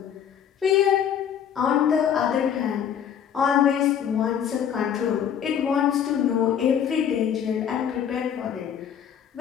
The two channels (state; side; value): quieter; right; 8.7 dB